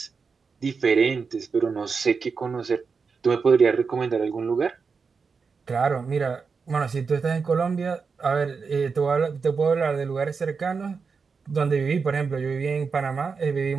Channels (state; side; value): quieter; left; 5.2 dB